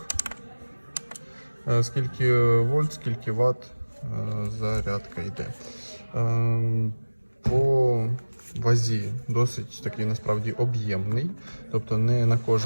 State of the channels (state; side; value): inverted; both; correlation -1.00